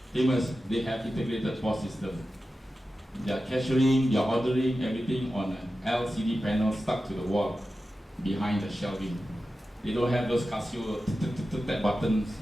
They have integrated POS system. They are cashiering, they are ordering everything on an LCD panel stuck to the wall behind the shelving. They don't have those Casio tap button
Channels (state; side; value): normal; both; correlation 0.93